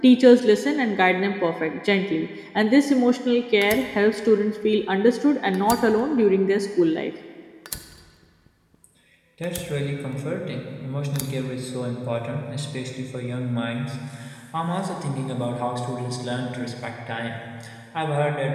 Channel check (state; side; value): identical; both; correlation 1.00